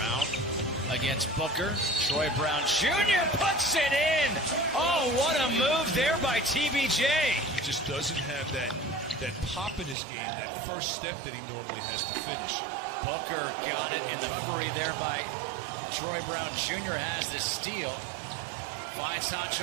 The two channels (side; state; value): left; drops out; at 10.0 s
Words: against Booker. Troy Brown Jr. puts it in. Oh, what a move there by TBJ. He just doesn't have that pop in his game, that first step that he normally has to finish. Booker got it in the recovery there by Troy Brown Jr. has the steal. Finds